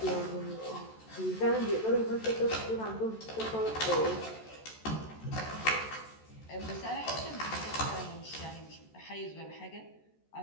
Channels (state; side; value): late; right; 14 ms